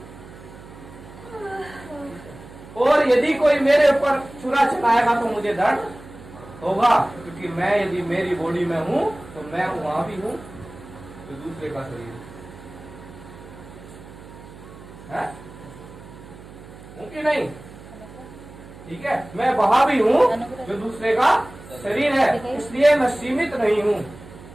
और यदि कोई मेरे ऊपर छुरा चलाएगा तो मुझे दर्द होगा, क्योंकि मैं यदि मेरी बॉडी में हूं तो मैं वहां भी हूं, तो दूसरे का शरीर है, हूं कि नहीं? ठीक है, मैं वहां भी हूं जो दूसरे का शरीर है, इसलिए मैं सीमित नहीं हूं।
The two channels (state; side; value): noise; right; hum, 18 dB below the sound